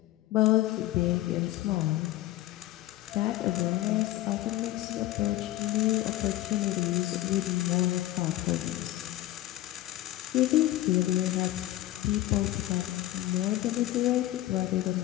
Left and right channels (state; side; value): quieter; right; 15.5 dB